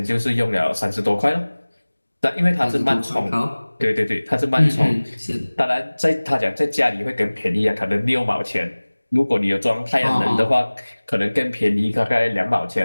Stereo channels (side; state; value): both; inverted; correlation -1.00